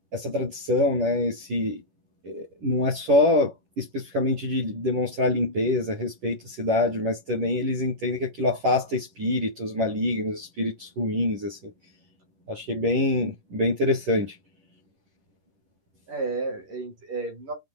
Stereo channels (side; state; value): left; late; 11 ms